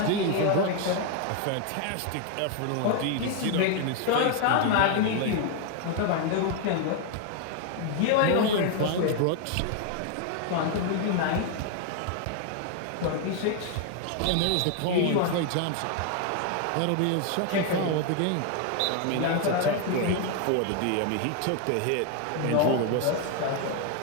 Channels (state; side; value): different; both; correlation 0.01